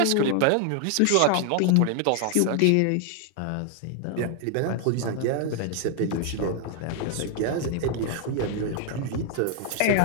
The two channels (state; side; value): different; both; correlation 0.00